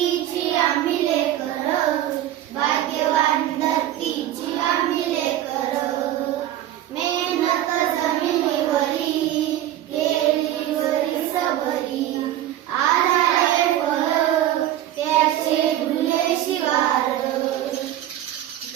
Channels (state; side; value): quieter; left; 12.9 dB